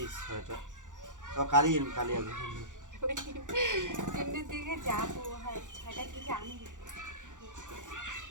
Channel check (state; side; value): late; left; 0.87 ms